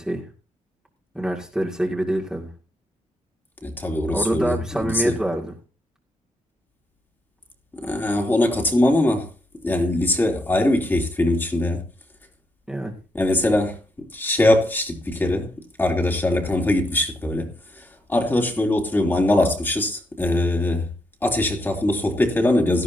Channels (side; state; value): both; normal; correlation 0.80